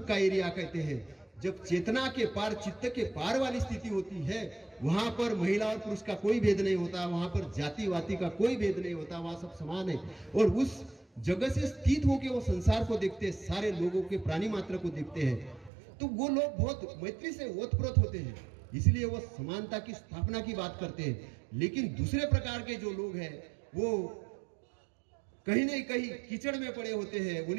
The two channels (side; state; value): left; drops out; at 15.7 s